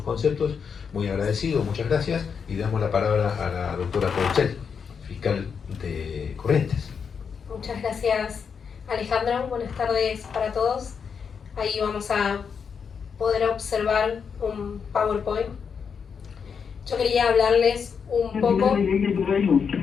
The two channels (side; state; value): right; quieter; 6.4 dB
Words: conceptos, muy agradecido, muchas gracias, y damos la palabra a la doctora Couchel, fiscal de Corrientes. Muchas gracias, Alejandro. Buenas tardes para todos. Ahí vamos a poder observar un PowerPoint. Yo quería hablarles un poco